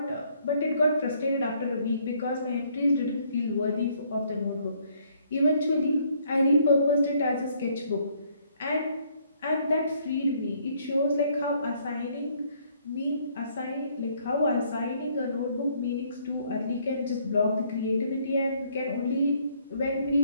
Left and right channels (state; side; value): inverted; both; correlation -0.66